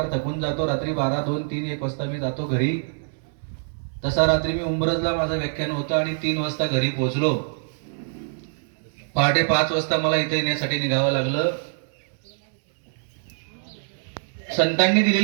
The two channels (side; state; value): left; silent; digital silence